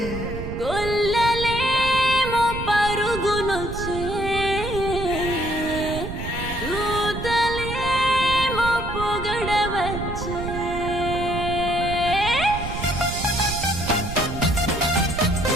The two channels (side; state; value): right; noise; rumble, 7 dB below the sound